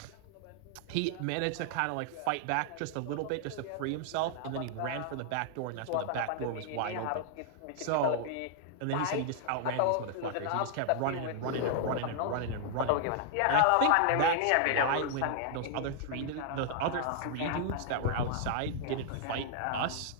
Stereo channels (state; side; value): different; both; correlation 0.00